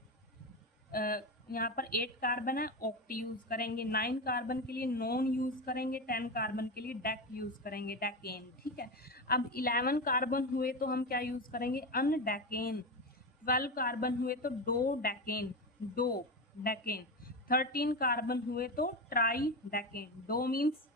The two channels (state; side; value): normal; both; correlation 0.18